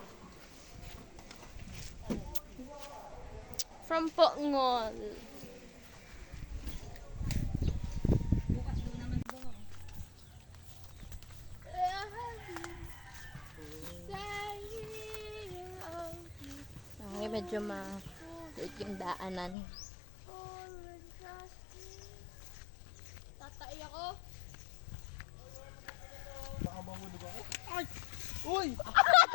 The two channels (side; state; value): right; drops out; at 19.6 s